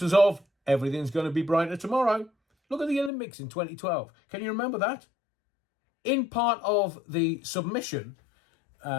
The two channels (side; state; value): right; drops out; at 3.1 s